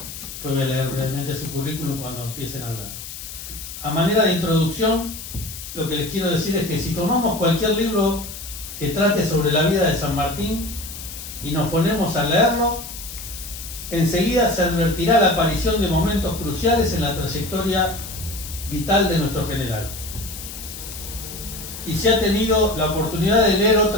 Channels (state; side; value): noise; left; hiss, 11 dB below the sound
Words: Después voy a leer brevemente su currículum cuando empiecen a hablar. A manera de introducción, lo que les quiero decir es que si tomamos cualquier libro que trate sobre la vida de San Martín y nos ponemos a leerlo, enseguida se advertirá la aparición de momentos cruciales en la trayectoria vital de nuestro general. Y si ha tenido la oportunidad de leer